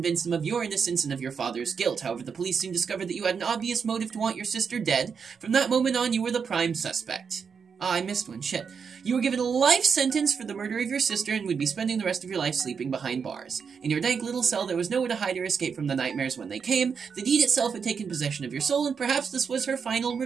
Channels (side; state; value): left; quieter; 6.2 dB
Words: them of your innocence and of your father's guilt. However, the police soon discovered that you had an obvious motive to want your sister dead. From that moment on, you were the prime suspect. Ah, I missed one. Shit. You were given a life sentence for the murder of your sister and would be spending the rest of your life sleeping behind bars. In your dank little cell, there was nowhere to hide or escape from the nightmares when they came. The deed itself had taken possession of your soul, and perhaps this was her final